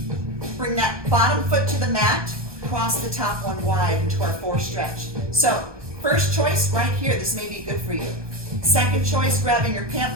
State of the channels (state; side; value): late; left; 1.2 ms